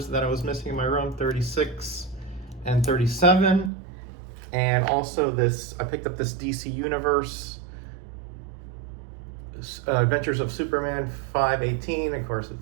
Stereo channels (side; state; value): left; drops out; at 3.7 s